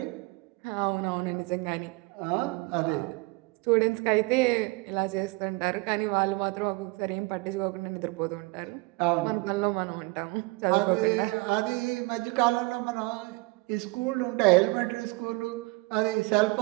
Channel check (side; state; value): left; quieter; 24.4 dB